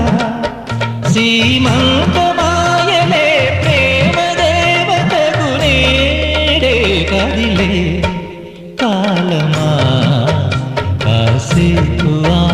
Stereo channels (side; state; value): both; identical; correlation 1.00